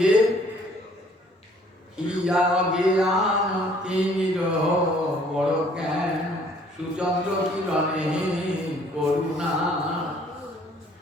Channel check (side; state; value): both; normal; correlation 0.59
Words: বড় জ্ঞান সুচন্দ্র কিরণে করুণা,